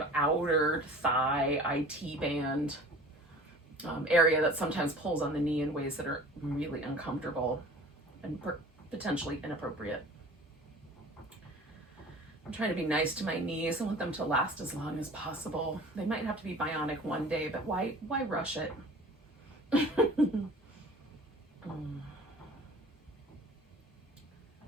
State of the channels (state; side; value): normal; both; correlation 0.44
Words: outer thigh IT band area that sometimes pulls on the knee in ways that are really uncomfortable and potentially inappropriate. I'm trying to be nice to my knees. I want them to last as long as possible. They might have to be bionic one day, but why rush it? I'm